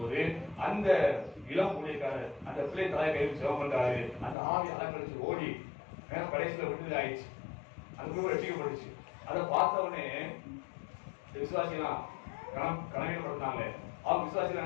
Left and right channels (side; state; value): right; drops out; at 4.4 s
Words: போது அந்த இளம் ஊழியக்காரர் அந்த பிள்ளை தலையை கையில் செலவு பண்றாரு. அந்த ஆவி அலங்கரிச்சு ஓடி கடைசியில விடுதலை ஆயிடுச்சு. அந்த குடும்பம் ரசிக்கப்பட்டுச்சு. அதை பார்த்த உடனே விசுவாசிலாம் கனவீனப்படுத்தினாங்க. அவங்க விசுவாசிகள்